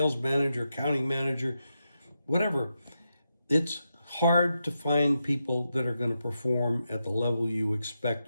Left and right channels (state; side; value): inverted; both; correlation -0.87